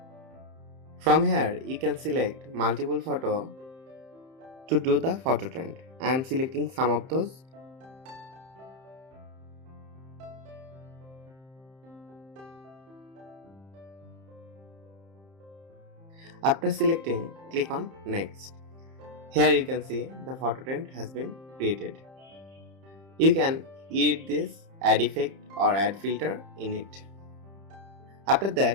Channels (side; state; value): left; late; 31 ms